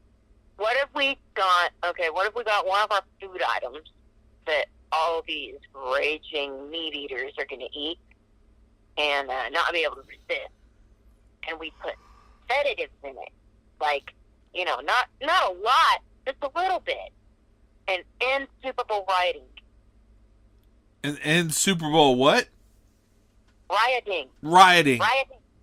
What if we got one of our food items that all these raging meat eaters are going to eat and not be able to resist, and we put sedatives in it, like, not a lot, just a little bit, and end Super Bowl rioting. And end Super Bowl what? Rioting.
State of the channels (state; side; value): identical; both; correlation 1.00